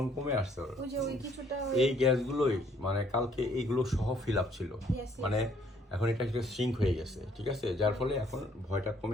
কমে আসছে ওর। এই গ্যাসগুলোই মানে কালকে এইগুলো সহ ফিল আপ ছিল, মানে এখন এটা একটা সিঙ্ক হয়ে গেছে, ঠিক আছে, যার ফলে এখন ভয়টা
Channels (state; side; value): normal; both; correlation 0.65